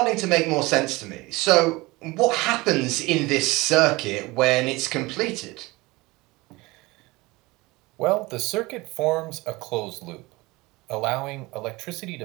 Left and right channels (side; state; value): left; quieter; 22.2 dB